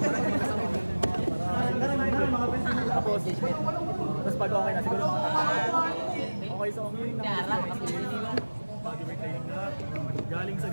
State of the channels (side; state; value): both; inverted; correlation -1.00